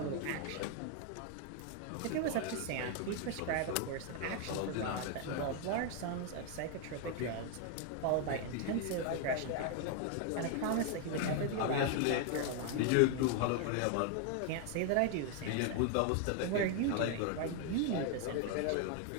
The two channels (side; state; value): both; different; correlation 0.00